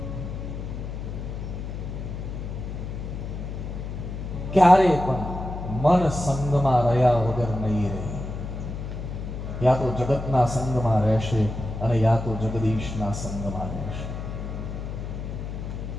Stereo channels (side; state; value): left; noise; hum, 6 dB below the sound